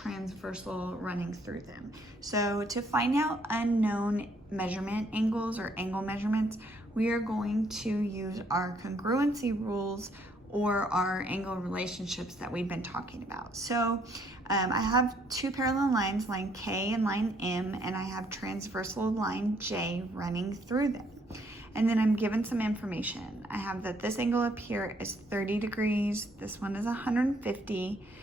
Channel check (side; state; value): both; normal; correlation 0.67